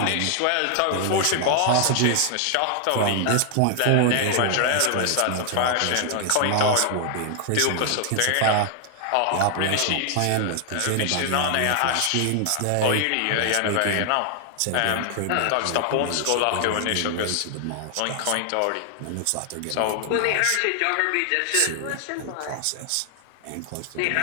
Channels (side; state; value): both; different; correlation 0.00